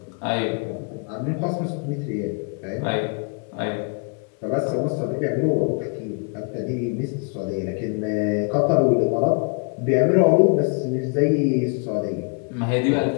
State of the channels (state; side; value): quieter; right; 36.1 dB